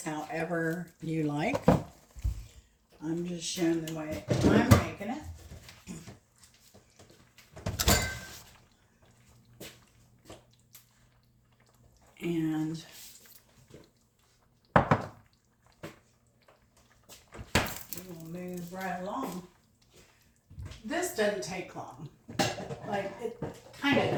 however you like. I'm just showing the way I'm making it. And we will move right along. This doesn't take long. Like, it kind of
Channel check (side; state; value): both; identical; correlation 1.00